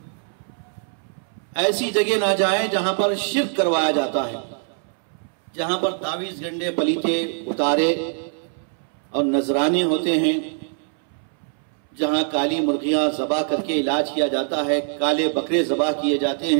ایسی جگہ نہ جائیں جہاں پر شرک کروایا جاتا ہے، جہاں پر تعویذ گنڈے، پلیتے، اتارے اور نذرانے ہوتے ہیں، جہاں کالی مرغیاں ذبح کر کے علاج کیا جاتا ہے، کالے بکرے ذبح کیے جاتے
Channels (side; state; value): left; silent; 63 dB below the other